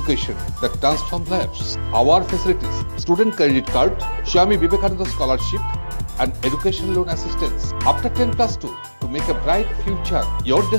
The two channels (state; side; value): inverted; both; correlation -1.00